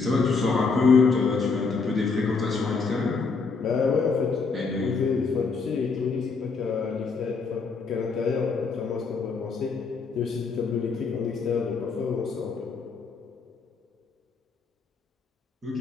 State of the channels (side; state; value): right; quieter; 4.7 dB